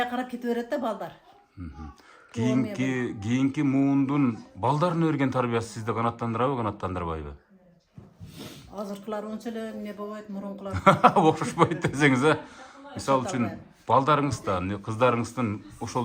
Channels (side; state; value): both; identical; correlation 1.00